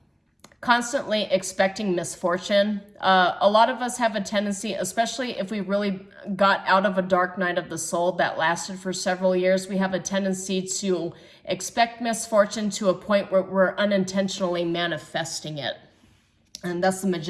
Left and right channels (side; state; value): both; identical; correlation 1.00